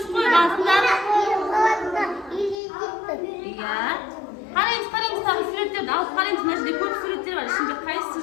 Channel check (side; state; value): right; drops out; at 2.6 s